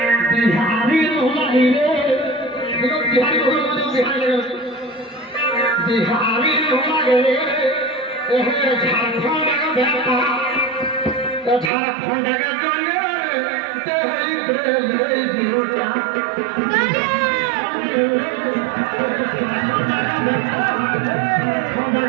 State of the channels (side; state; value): left; drops out; at 11.7 s